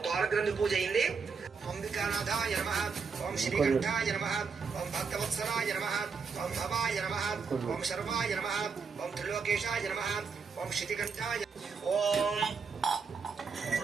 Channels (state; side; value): quieter; left; 5.4 dB